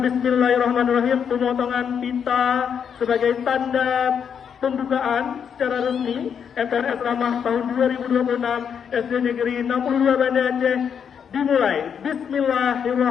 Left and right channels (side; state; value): right; quieter; 7.5 dB